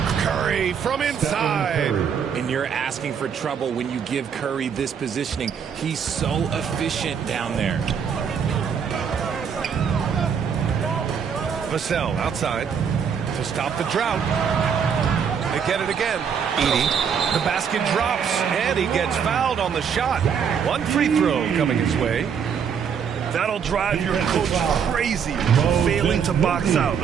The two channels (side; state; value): left; quieter; 7.2 dB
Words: Curry from inside. And you're asking for trouble when you give Curry this positioning. He's so efficient down there. Vassell outside to stop the drought. They get it again. Edey. The basket drops, and he gets fouled on the shot. One free throw coming his way. That'll drive your coach crazy, failing to box out.